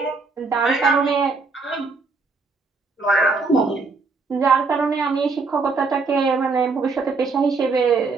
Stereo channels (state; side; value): quieter; left; 4.2 dB